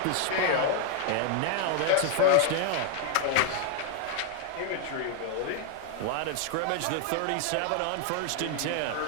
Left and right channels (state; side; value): different; both; correlation 0.00